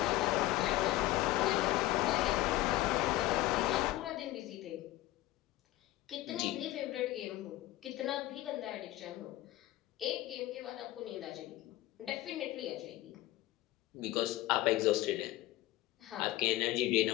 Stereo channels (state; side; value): quieter; right; 16.3 dB